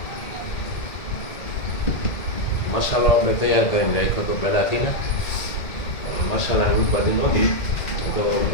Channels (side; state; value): right; late; 1.9 ms